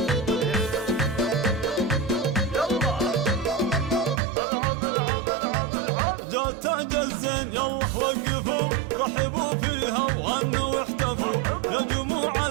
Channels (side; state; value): left; drops out; at 4.2 s